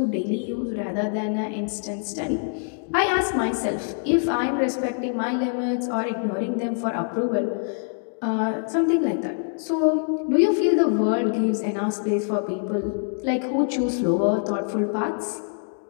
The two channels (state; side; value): silent; right; 62 dB below the other